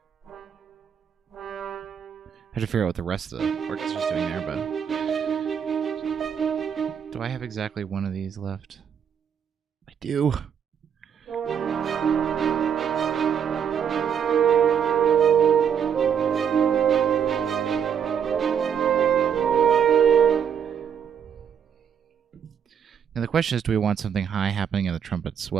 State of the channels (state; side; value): quieter; left; 8.0 dB